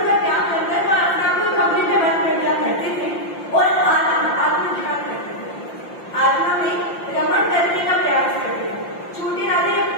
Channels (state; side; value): late; right; 5.8 ms